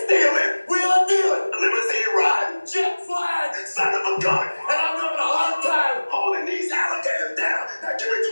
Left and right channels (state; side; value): inverted; both; correlation -1.00